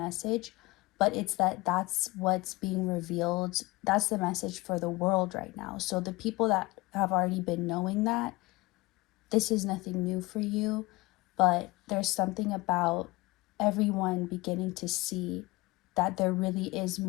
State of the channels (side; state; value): right; quieter; 22.3 dB